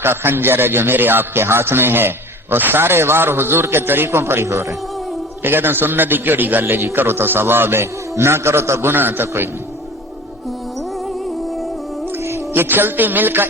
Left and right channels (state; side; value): normal; both; correlation 0.41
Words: کا خنجر ہے جو میرے آپ کے ہاتھ میں ہے، اور سارے وار حضور کے طریقوں پر ہی ہو رہے ہیں۔ یہ کہتے ہیں سنت ہی کیڑی گل ہے جی، کرو تو ثواب ہے، نہ کرو تو گناہ تو کوئی نہیں۔ یہ چلتی مل کا